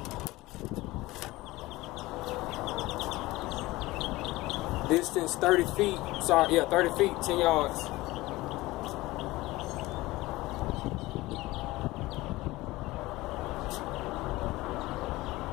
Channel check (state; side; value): quieter; right; 19.4 dB